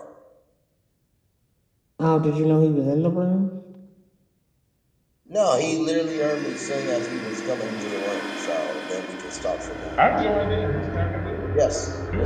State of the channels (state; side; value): identical; both; correlation 1.00